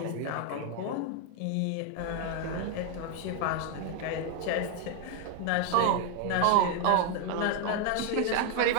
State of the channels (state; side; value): different; both; correlation 0.00